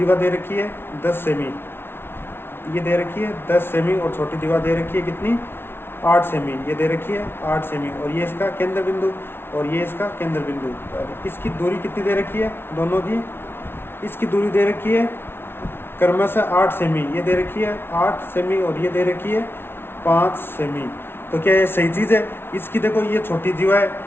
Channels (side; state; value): right; late; 0.11 ms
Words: दे रखी है 10 सेमी, ये दे रखी है 10 सेमी, और छोटी दीवार दे रखी है कितनी, 8 सेमी, ये दे रखी है 8 सेमी, और ये इसका केंद्र बिंदु और ये इसका केंद्र बिंदु। इसकी दूरी कितनी दे रखी है, दोनों की, इसकी दूरी दे रखी है क्रमशः 8 सेमी, ये दे रखी है 8 सेमी, और ये दे रखी है 5 सेमी। तो क्या ये सही चीज़ है। इसकी देखो ये छोटी जीवा है,